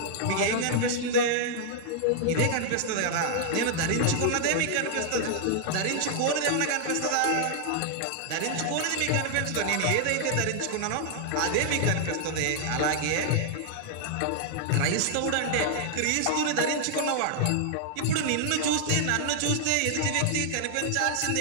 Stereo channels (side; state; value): both; different; correlation 0.00